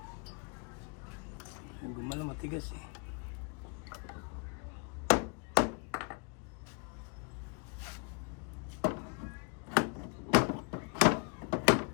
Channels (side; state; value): right; quieter; 36.3 dB